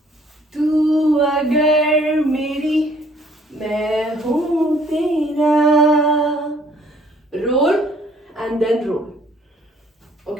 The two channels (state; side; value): normal; both; correlation 0.60